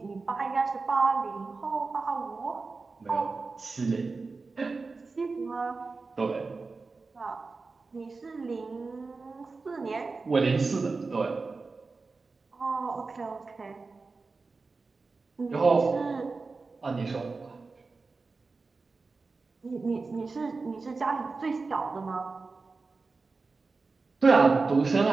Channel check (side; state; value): left; quieter; 4.1 dB